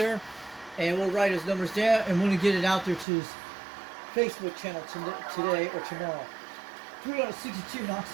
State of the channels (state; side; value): drops out; left; at 3.1 s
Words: and we'll write his numbers down, and we're going to get it out there to his Facebook channel today or tomorrow. 362,